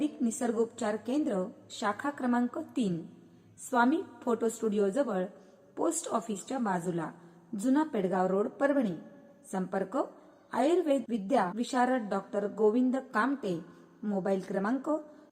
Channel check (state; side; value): identical; both; correlation 1.00